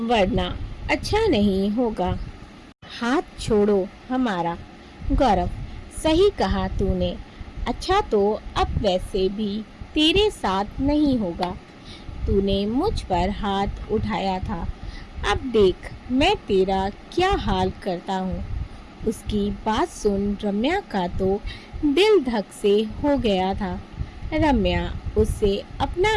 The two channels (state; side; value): identical; both; correlation 1.00